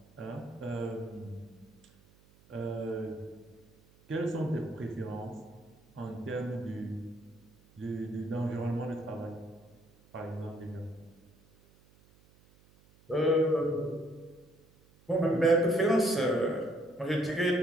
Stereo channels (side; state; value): right; noise; hum, 29 dB below the sound